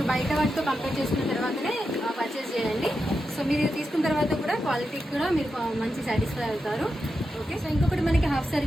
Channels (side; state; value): both; normal; correlation 0.88